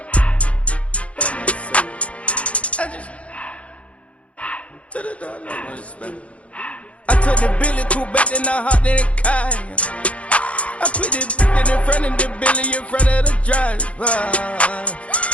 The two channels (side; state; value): right; late; 0.063 ms